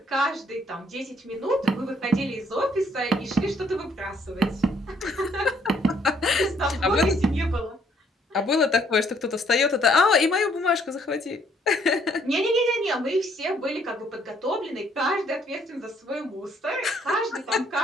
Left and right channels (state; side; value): normal; both; correlation 0.66